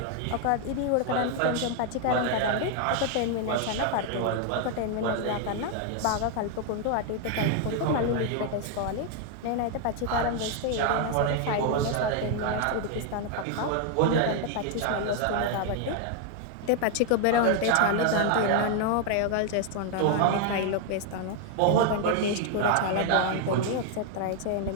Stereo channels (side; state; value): both; different; correlation 0.00